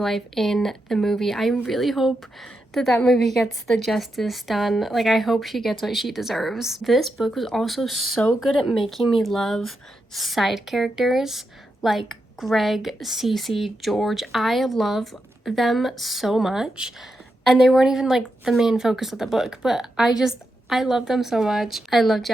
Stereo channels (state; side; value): normal; both; correlation 0.86